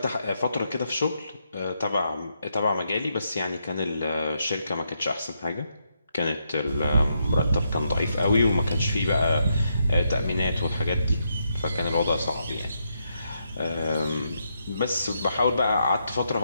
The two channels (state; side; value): inverted; both; correlation -0.79